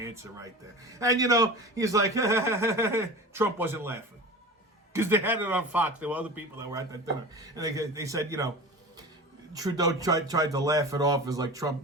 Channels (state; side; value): normal; both; correlation 0.33